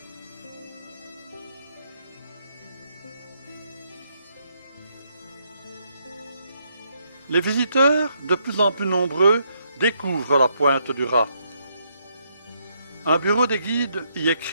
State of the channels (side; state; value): both; inverted; correlation -0.75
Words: Les visiteurs, de plus en plus nombreux, découvrent la pointe du Raz. Un bureau des guides y est